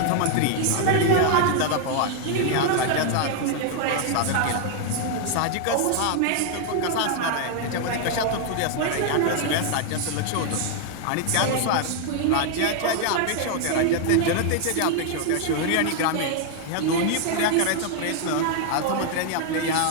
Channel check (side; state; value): both; different; correlation 0.00